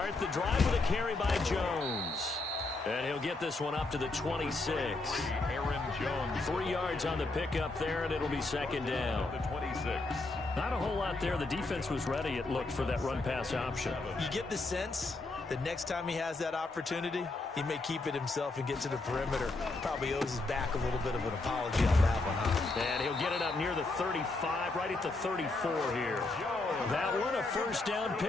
the drive with a carry by Jones. And he'll get this one up to the 26. Aaron Jones. 3 yards on the pickup there, and it'll be 2nd down. The 26. Not a whole lot there. The defense was ready, it looked, for that run-pass option. You get the sense that next time he has that opportunity, he may keep it himself and get to the perimeter. Probably owes his back a little bit of an apology on that one, huh? And he'll get it up near the 35, right at the 34 here. That one, a first down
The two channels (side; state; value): right; quieter; 3.2 dB